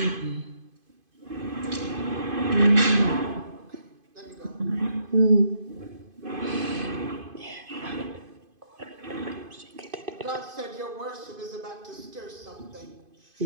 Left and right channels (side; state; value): left; late; 2.5 ms